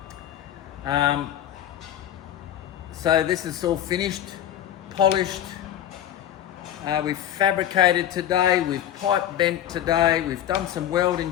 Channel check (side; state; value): right; quieter; 11.3 dB